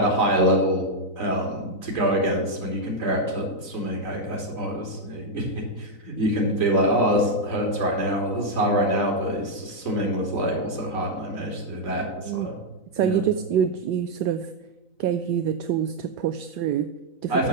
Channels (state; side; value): late; right; 3.9 ms